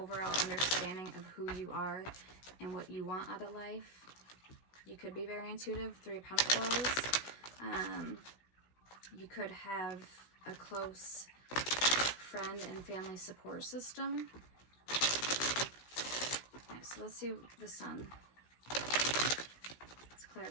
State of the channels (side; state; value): right; late; 16 ms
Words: understanding of who you are and what you want out of life. You could be very intuitive. Three of Pentacles. You could have a close friend and family support system. Okay, so let's see the Sun. Let's